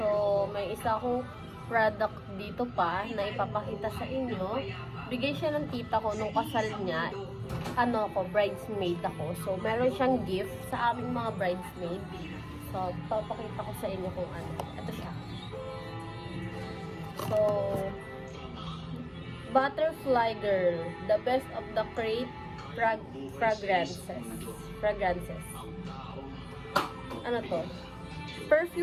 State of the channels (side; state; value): both; identical; correlation 1.00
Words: may isa akong product dito pa na ipapakita sa inyo. Bigay siya ng tita ko nung kasal niya. Bridesmaid ako. So, meron siyang gift sa aming mga bridesmaid. So, papakita ko sa inyo kung ano. Ito siya. So, Butterfly Girl, the best of the crate fragrances. Ano to?